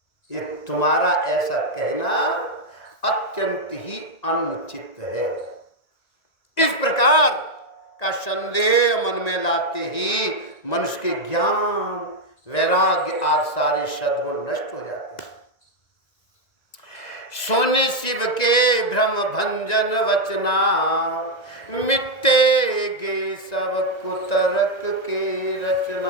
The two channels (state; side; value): late; right; 1.9 ms